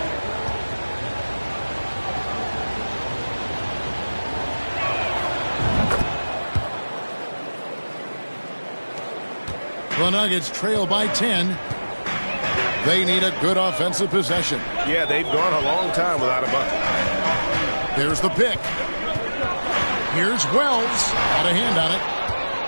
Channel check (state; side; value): inverted; both; correlation -1.00